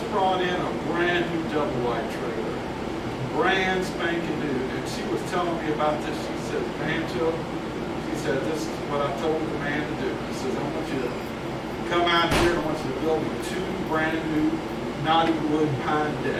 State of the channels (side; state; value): both; identical; correlation 1.00